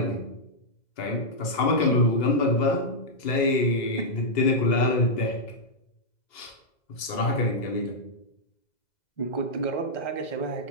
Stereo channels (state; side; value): late; right; 2.0 ms